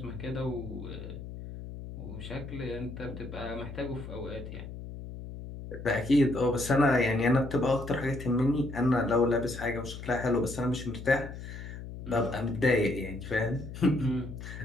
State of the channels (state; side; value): noise; left; hum, 10 dB below the sound